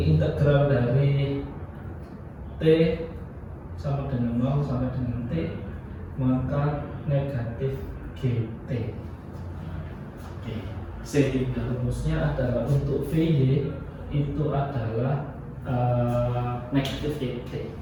integral dari t sama dengan 0 sampai dengan t, maka negatif gt. Oke, sehingga rumusnya adalah untuk vy itu adalah negatif gt.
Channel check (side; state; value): both; identical; correlation 1.00